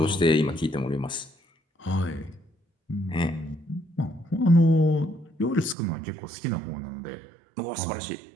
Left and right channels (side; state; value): left; drops out; at 5.8 s